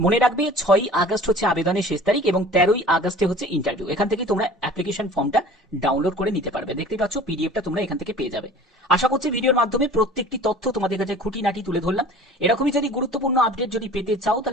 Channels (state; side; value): normal; both; correlation 0.44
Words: রাখবে 6ই আগস্ট হচ্ছে আবেদনের শেষ তারিখ এবং 13ই আগস্টে হচ্ছে ইন্টারভিউ। এখান থেকে তোমরা অ্যাপ্লিকেশন ফর্মটা ডাউনলোড করে নিতে পারবে। দেখতে পাচ্ছ পিডিএফটা তোমরা এখান থেকে পেয়ে যাবে। আশা করছি ভিডিওর মাধ্যমে প্রত্যেকটি তথ্য তোমাদের কাছে খুঁটিনাটি তুলে ধরলাম। এরকমই যদি গুরুত্বপূর্ণ আপডেট যদি পেতে চাও